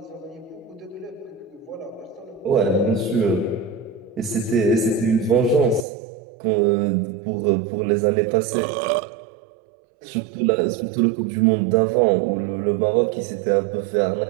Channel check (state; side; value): drops out; left; at 5.9 s